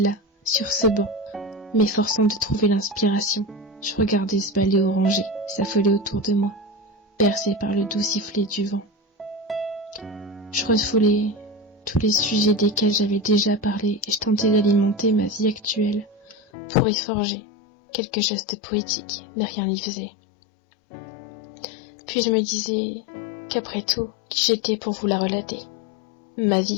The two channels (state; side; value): drops out; right; at 16.4 s